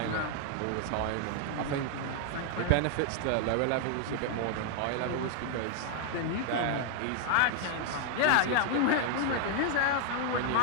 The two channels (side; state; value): both; different; correlation 0.00